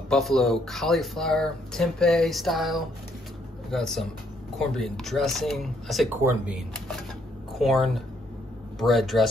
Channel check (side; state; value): both; normal; correlation 0.70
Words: cauliflower tempeh style. We got some cornbread dressing. I say corned bread